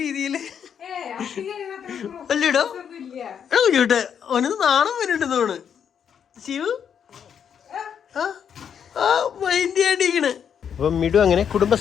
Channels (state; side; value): quieter; right; 8.0 dB